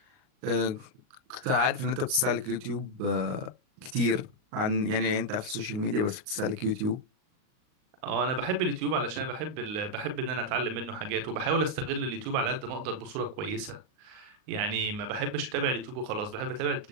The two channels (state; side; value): late; left; 38 ms